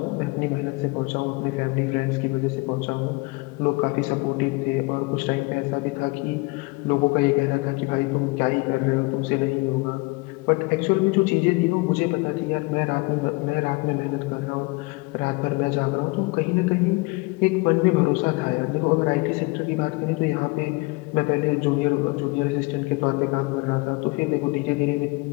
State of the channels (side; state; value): right; quieter; 25.7 dB